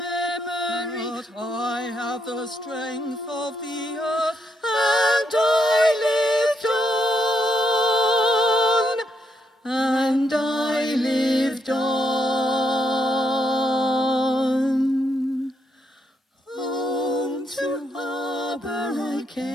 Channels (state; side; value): normal; both; correlation 0.77